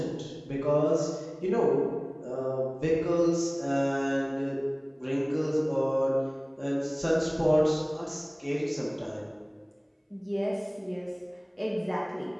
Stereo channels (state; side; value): identical; both; correlation 1.00